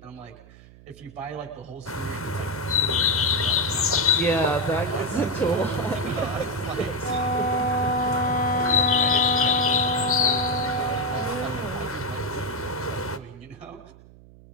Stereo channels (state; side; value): noise; right; hum, 22 dB below the sound